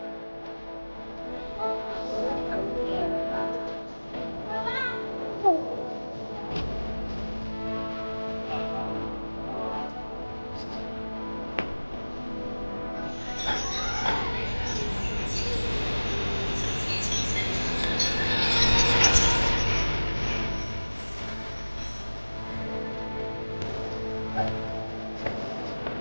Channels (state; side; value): inverted; both; correlation -1.00